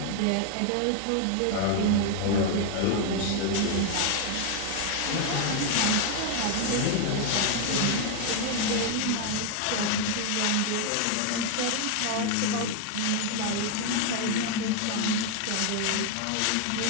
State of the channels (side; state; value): both; different; correlation 0.00